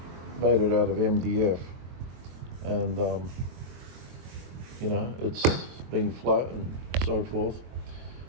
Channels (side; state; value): left; late; 23 ms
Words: it out of MDF, and it's been flat and so forth.